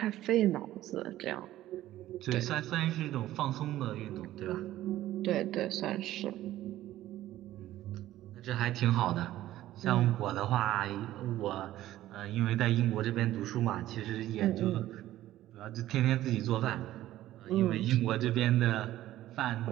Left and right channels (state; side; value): quieter; left; 14.3 dB